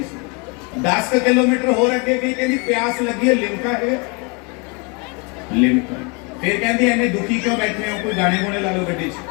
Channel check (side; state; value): right; quieter; 31.5 dB